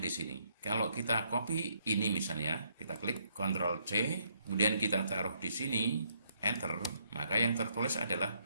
di sini. Kalau kita copy ini misalnya, kita klik Ctrl C, kemudian kita taruh di sini, Enter, maka yang tertulis adalah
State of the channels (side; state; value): both; inverted; correlation -0.72